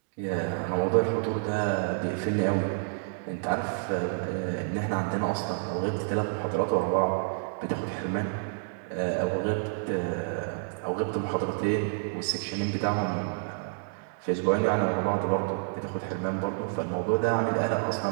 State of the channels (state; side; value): silent; left; digital silence